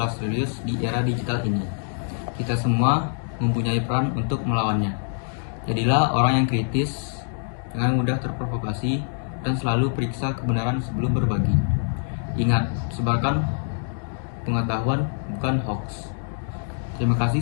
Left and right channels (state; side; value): silent; right; digital silence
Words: serius di era digital ini. Kita semua mempunyai peran untuk melawannya. Jadilah orang yang kritis, jangan mudah terprovokasi, dan selalu periksa kebenaran sebelum berbagi. Ingat, sebarkan pengetahuan, bukan hoax. Terima kasih